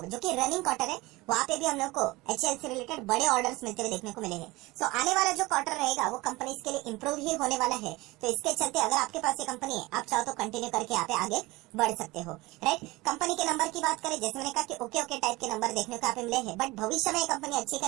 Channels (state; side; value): quieter; left; 21.3 dB